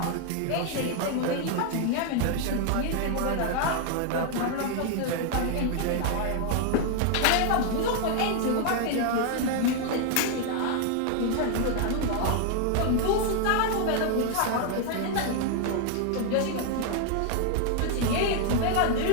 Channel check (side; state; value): both; different; correlation 0.00